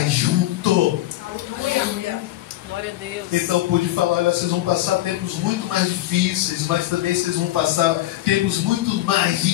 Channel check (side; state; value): right; quieter; 15.6 dB